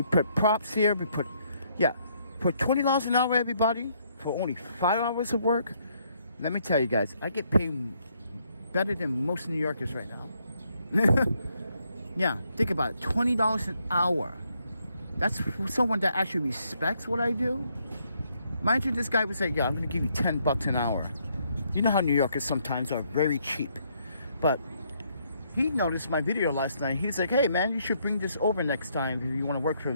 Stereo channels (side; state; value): both; inverted; correlation -0.72